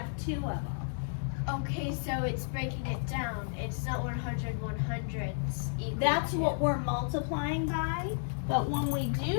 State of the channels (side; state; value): right; silent; digital silence